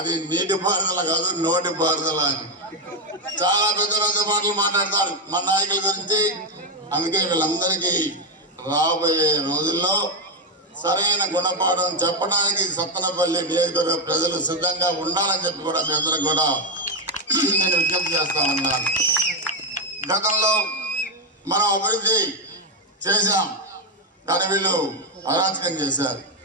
నీటి పారుదల కాదు నోటి పారుదల అని. చాలా పెద్ద పెద్ద మాటలు మాట్లాడతారు మన నాయకుల గురించి. అందుకే వీళ్ళందరికీ రాబోయే రోజుల్లో సరైన గుణపాఠం చెప్పడానికి సత్తెనపల్లి నియోజకవర్గ ప్రజలు సిద్ధంగా ఉండాలని చెప్పి కూడా మీ అందరికి కూడా నేను విజ్ఞప్తి చేస్తా ఉన్నాను. గతంలో మనం అభివృద్ధి చేశాం, కానీ వీళ్ళు అరాచకం చేశారు.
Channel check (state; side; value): normal; both; correlation 0.06